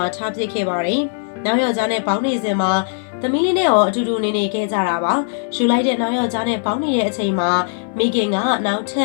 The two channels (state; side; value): silent; right; digital silence